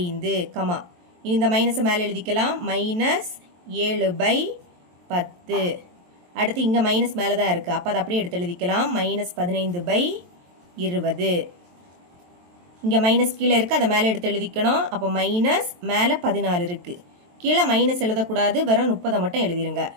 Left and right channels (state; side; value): late; left; 23 ms